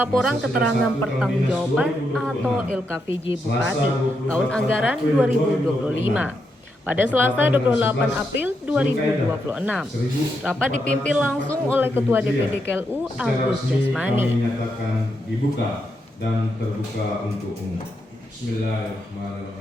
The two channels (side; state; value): both; normal; correlation 0.82